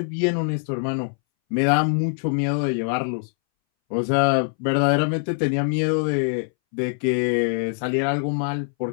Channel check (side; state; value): right; silent; 62 dB below the other